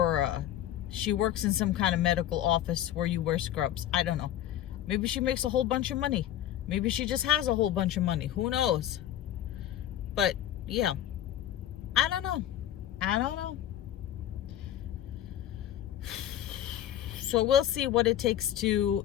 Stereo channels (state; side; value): quieter; right; 12.0 dB